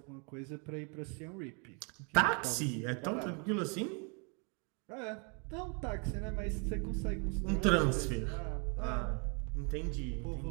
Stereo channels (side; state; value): left; quieter; 36.2 dB